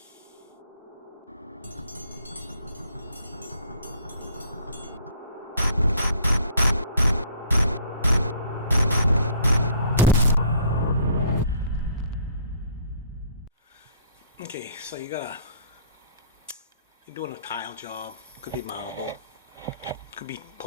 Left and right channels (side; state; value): both; inverted; correlation -0.58